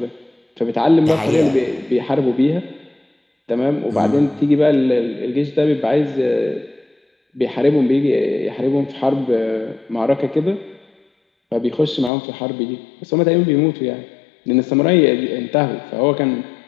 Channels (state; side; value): drops out; right; at 12.1 s